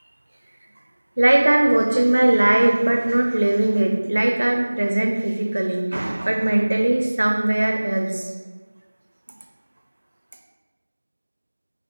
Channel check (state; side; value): inverted; both; correlation -1.00